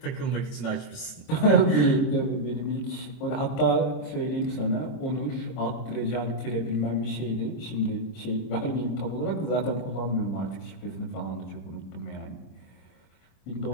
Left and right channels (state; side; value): late; right; 26 ms